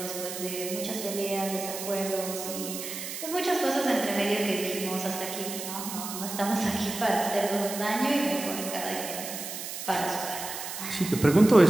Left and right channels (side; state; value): right; noise; hiss, 7 dB below the sound